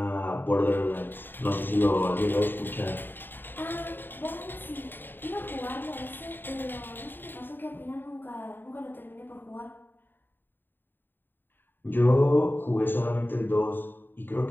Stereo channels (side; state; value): right; late; 0.094 ms